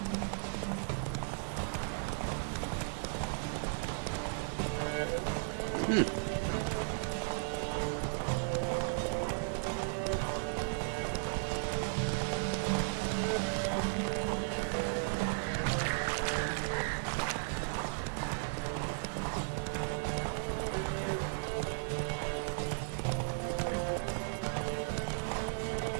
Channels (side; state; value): left; silent; digital silence